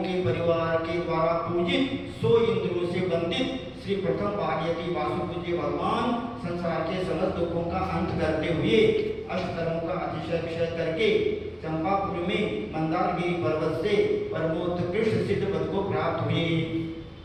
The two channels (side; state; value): both; identical; correlation 1.00